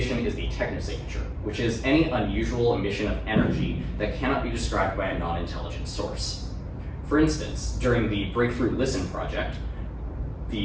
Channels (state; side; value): identical; both; correlation 1.00